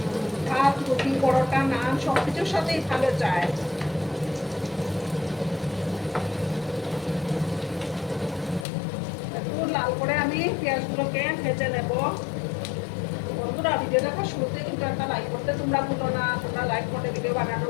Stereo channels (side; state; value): right; drops out; at 8.7 s